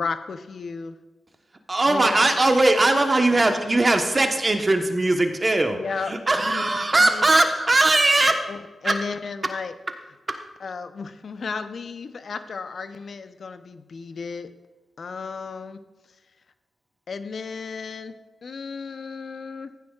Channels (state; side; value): normal; both; correlation 0.95